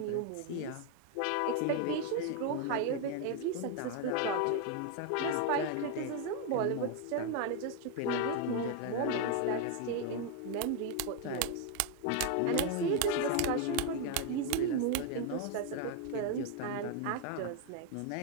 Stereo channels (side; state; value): both; different; correlation 0.01